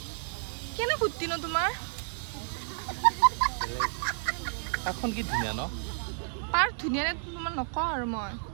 কেনে ফুটি ন তোমাৰ পাৰ্কখন কি ধুনীয়া ন পাৰ্ক ধুনীয়া নে তোমাৰ নকওঁ আৰু মই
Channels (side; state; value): left; silent; digital silence